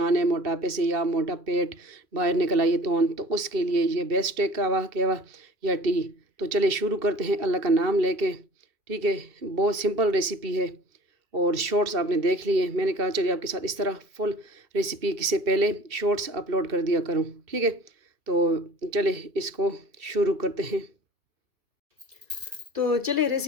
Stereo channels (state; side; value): late; left; 2.7 ms